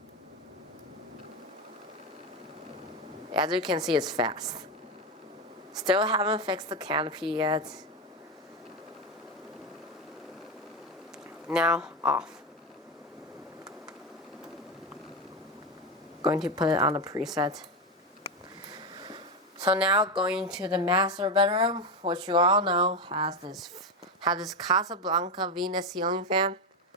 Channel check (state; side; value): normal; both; correlation 0.13